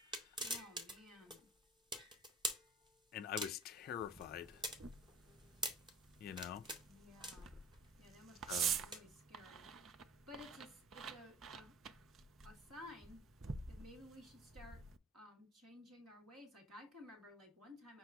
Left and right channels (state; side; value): normal; both; correlation 0.40